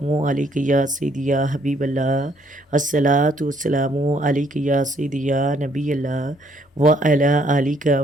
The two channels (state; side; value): normal; both; correlation 0.67